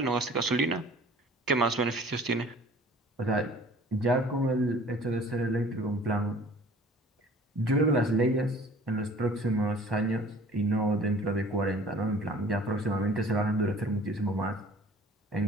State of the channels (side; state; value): both; normal; correlation 0.49